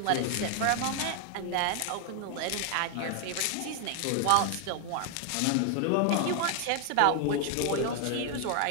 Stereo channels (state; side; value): different; both; correlation 0.00